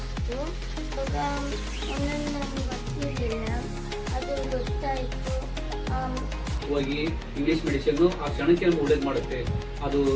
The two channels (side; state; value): both; identical; correlation 1.00